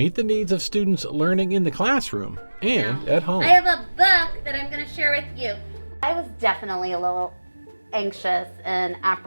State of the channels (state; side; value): inverted; both; correlation -1.00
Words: the needs of students learning in the classroom and at home. I have a book that I'm going to share with you. I was definitely a little anxious and